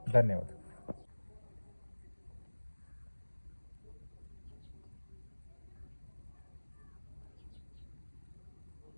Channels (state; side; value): inverted; both; correlation -1.00